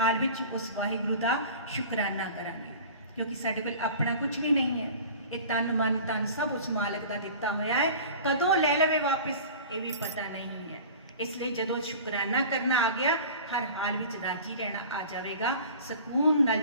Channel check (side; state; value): both; inverted; correlation -0.40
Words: विच उस वाहिगुरू का शुकराना करांगे, क्योंकि साडे कोल अपना कुछ भी नहीं है। ये तन मन तन सब उस मालक का दिता होया है, कदों ले लवे वापस ये भी पता नहीं है। इसलिए जदों शुकराना करना आ गया हर हाल विच राजी रहना आ जाएगा, सुकून